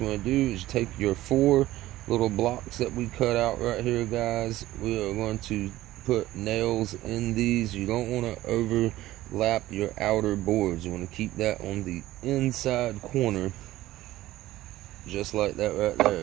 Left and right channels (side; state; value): left; quieter; 15.8 dB